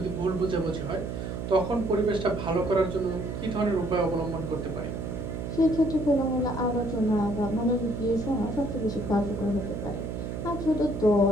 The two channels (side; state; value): right; noise; hum, 5 dB below the sound